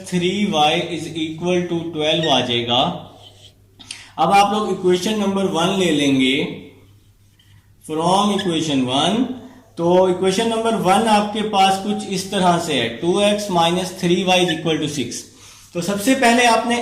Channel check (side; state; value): both; identical; correlation 1.00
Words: 3y is equal to 12 आ जाएगा। अब आप लोग इक्वेशन नंबर 1 ले लेंगे फ्रॉम इक्वेशन 1। तो इक्वेशन नंबर 1 आपके पास कुछ इस तरह से है, 2x minus 3y is equal to 6। तो सबसे पहले आपने